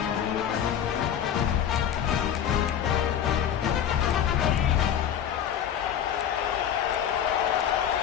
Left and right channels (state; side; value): quieter; right; 9.4 dB